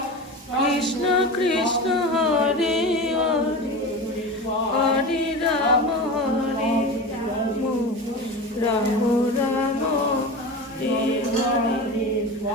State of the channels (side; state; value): both; normal; correlation 0.28